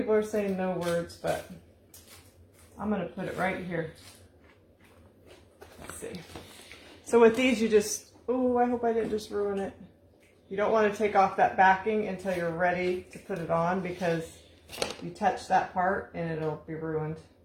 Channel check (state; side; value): identical; both; correlation 1.00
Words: are saying no words, but I'm going to put it right here. Let's see. So with these, you just, oh, I hope I didn't just ruin it. You don't want to take off that backing until you're ready to put it on, because you touch that part and it'll be ruined.